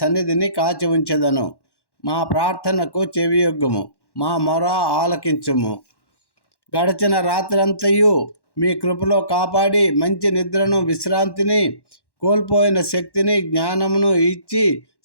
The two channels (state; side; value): late; right; 1.1 ms